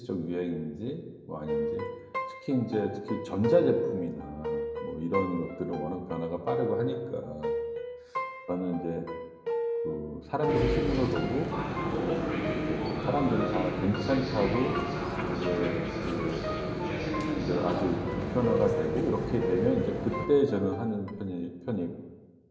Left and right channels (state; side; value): identical; both; correlation 1.00